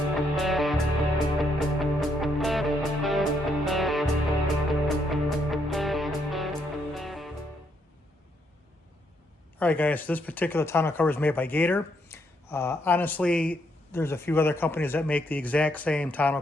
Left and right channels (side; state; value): both; normal; correlation 0.74